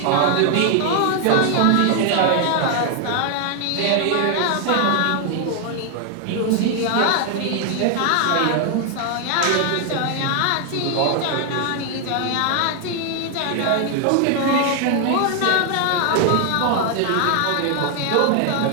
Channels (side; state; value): both; different; correlation 0.00